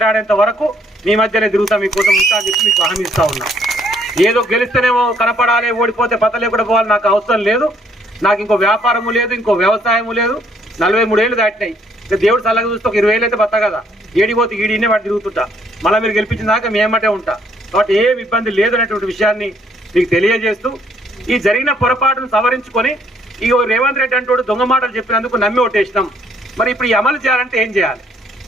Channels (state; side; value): normal; both; correlation 0.66